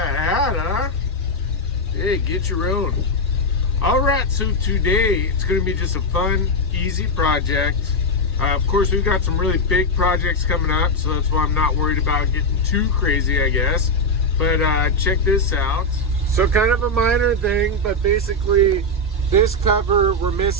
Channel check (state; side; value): normal; both; correlation 0.03